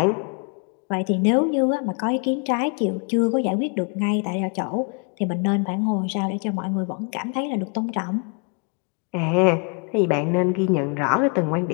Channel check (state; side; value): quieter; right; 36.6 dB